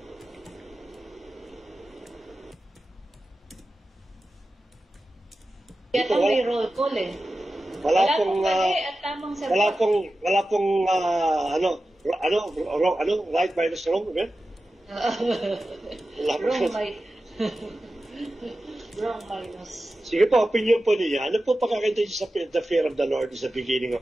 Ito may roll call eh. Wala pong at tamang sagot. Wala pong right minus wrong, right? Wrong, right? Sobrang minus. Sige po, opinion po niya. Ano po pagkakita niyo sa the fear of the Lord is the beginning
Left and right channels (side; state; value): both; normal; correlation 0.94